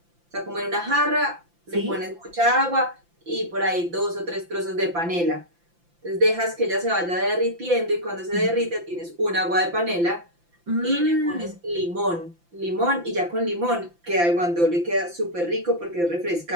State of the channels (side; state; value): left; late; 5.8 ms